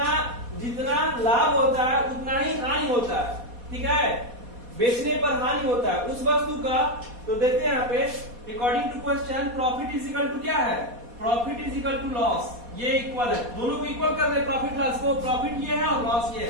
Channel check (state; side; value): late; left; 4.2 ms